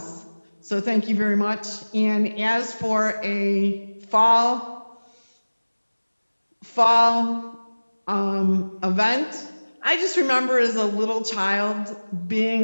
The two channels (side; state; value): both; inverted; correlation -1.00